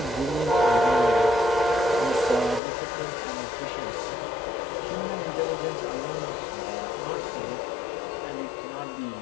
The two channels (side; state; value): right; drops out; at 2.6 s